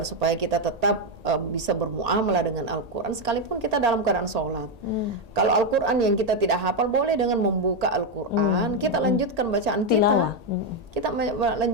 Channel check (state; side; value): late; left; 1.8 ms